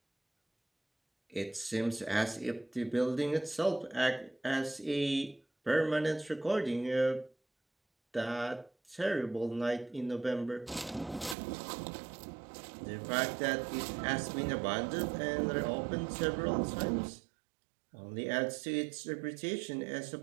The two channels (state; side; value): drops out; left; at 11.4 s